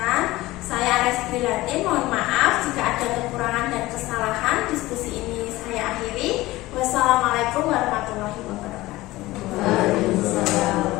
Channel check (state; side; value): quieter; right; 18.5 dB